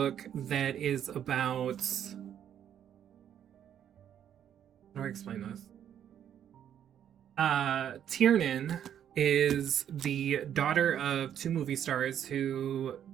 that is about... How do I explain this? Tiernan is the daughter of 2 movie stars who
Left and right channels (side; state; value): left; quieter; 9.7 dB